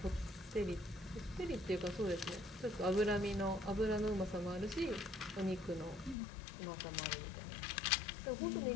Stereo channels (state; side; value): drops out; right; at 6.2 s